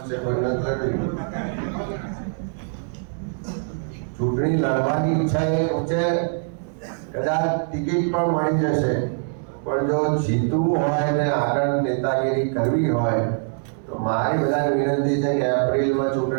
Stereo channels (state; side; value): silent; left; digital silence